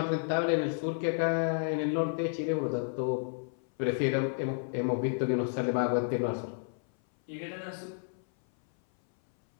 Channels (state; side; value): silent; right; 57 dB below the other